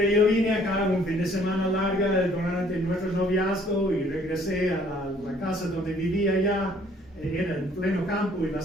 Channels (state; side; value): normal; both; correlation 0.60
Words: yo vine acá un fin de semana larga durante nuestro noviazgo y regresé a la casa donde vivía allá. Era en pleno campo y